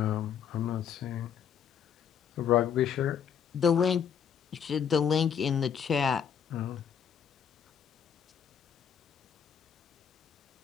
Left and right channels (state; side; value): quieter; right; 7.9 dB